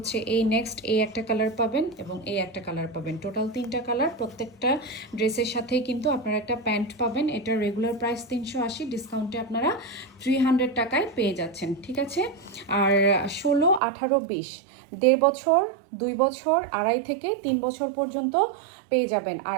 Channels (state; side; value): drops out; left; at 13.8 s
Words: এই নেক্সট এই একটা কালার পাবেন, এবং এই একটা কালার পাবেন। টোটাল 3টা কালার। প্রত্যেকটা ড্রেসের সাথেই কিন্তু আপনারা একটা প্যান্ট পাবেন। এটা রেগুলার প্রাইস 380, ডিসকাউন্টে আপনারা 300 টাকায় পেয়ে যাচ্ছেন। ঠিক আছে, আর 16, 18, 20, 1.5 বছর 2 বছর 2.5 থেকে 3 বছর পর্যন্ত পেয়ে যাবেন।